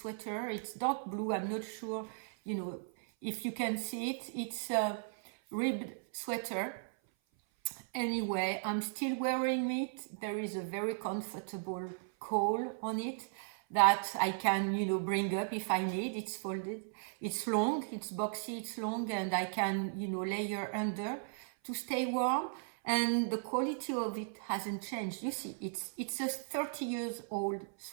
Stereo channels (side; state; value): left; silent; 54 dB below the other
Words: It's dark blue. I'm not sure if you can see it. It's a ribbed sweater. Anyway, I'm still wearing it. There is a very comfortable collar on it that I can, bring up if I need. It's folded. It's long, it's boxy, it's long, and I can, layer under to stay warm. And the quality of it hasn't changed. You see, it's a 30 years old